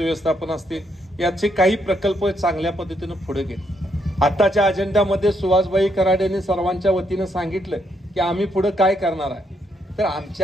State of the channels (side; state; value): both; normal; correlation 0.75